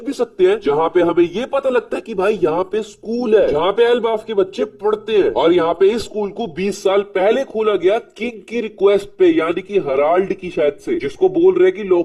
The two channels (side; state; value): both; identical; correlation 1.00